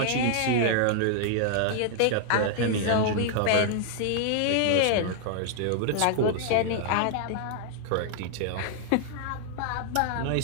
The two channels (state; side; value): different; both; correlation -0.01